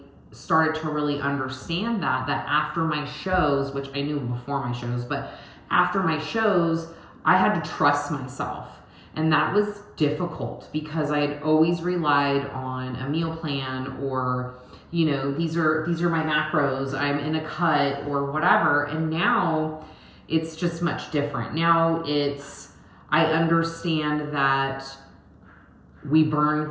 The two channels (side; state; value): both; identical; correlation 1.00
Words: started to really understand that after my shows, which I knew before my shows, but after my shows, I had to trust myself. And that was difficult because I had always relied on a meal plan, or, these are my macros, I'm in a cut or whatever. And now it's just much different. Now I understand that we